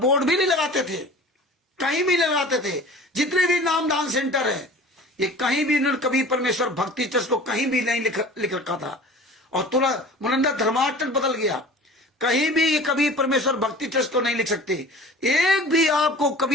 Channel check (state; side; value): normal; both; correlation 0.42